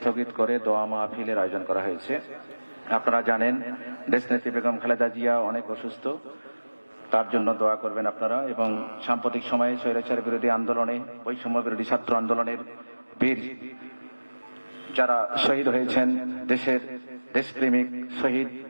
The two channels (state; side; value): inverted; both; correlation -1.00